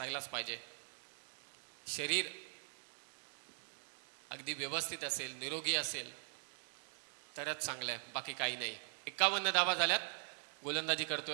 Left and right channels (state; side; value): silent; left; digital silence